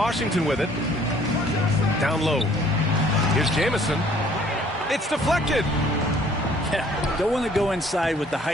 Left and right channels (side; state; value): both; normal; correlation 0.58